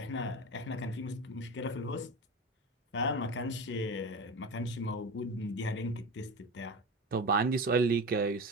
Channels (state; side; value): normal; both; correlation 0.27